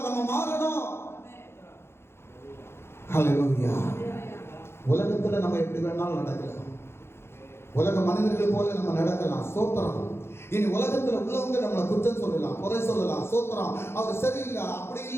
நம்ம மாறணும். ஹல்லேலூயா. உலகத்துல நம்ம எப்படி வேணாலும் நடக்கலாம். உலக மனிதர்கள் போல நம்ம நடக்கலாம். ஸ்தோத்திரம். இனி உலகத்துல உள்ளவங்க நம்மளை குற்றம் சொல்லலாம், குறை சொல்லலாம். ஸ்தோத்திரம். அவர் சரியில்லை, அப்படி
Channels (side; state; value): right; late; 0.12 ms